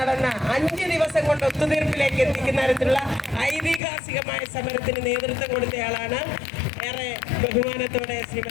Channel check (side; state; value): right; drops out; at 3.8 s